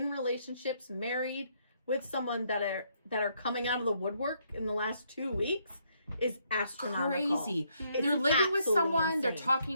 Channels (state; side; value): inverted; both; correlation -0.72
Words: relationships, married with someone that are coming out of the woodwork in the last 2 weeks is astronomical. Crazy. It's They're living with absolutely someone. They're insane.